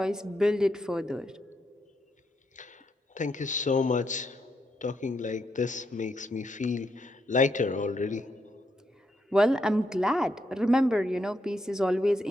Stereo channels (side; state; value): both; normal; correlation 0.79